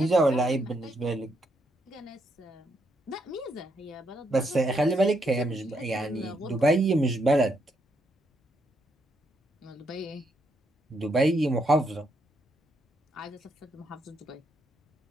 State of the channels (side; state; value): both; normal; correlation 0.77